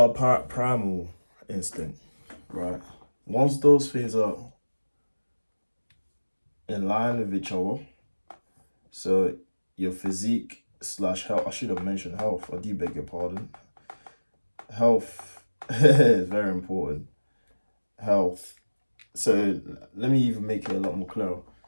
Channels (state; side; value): inverted; both; correlation -1.00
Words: our primal instinct, right? Once those things are in line with each other, so your physique slash health. I should have mentioned health. I do beg your pardon. Health is very important. Health. So let me even make it a lot more clear.